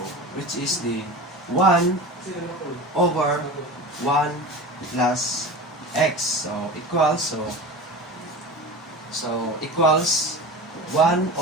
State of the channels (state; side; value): normal; both; correlation 0.31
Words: which is the 1 over 1 plus x. So equals 1